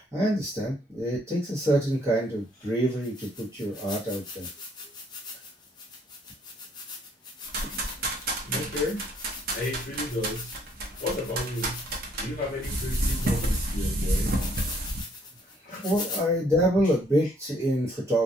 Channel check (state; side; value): normal; both; correlation 0.66